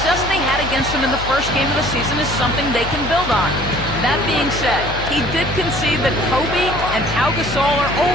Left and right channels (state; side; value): noise; left; hum, 9 dB below the sound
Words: they had against them in the first game of the season is something they can build on. That being said, he did concede that Kobe and Pau Gasol are